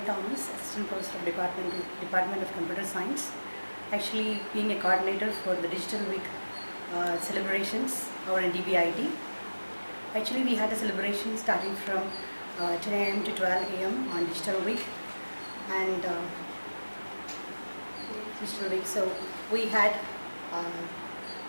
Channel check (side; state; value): both; inverted; correlation -1.00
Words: Thomas, Assistant Professor of Department of Computer Science. Actually, being a coordinator for the Digital Week celebrations over in Dbit. Actually, we had a celebration starting from 10 a.m. to 12 a.m. on Digital Week, and Digital Week. So we had